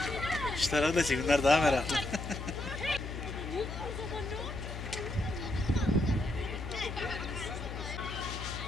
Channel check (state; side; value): noise; left; hum, 7 dB below the sound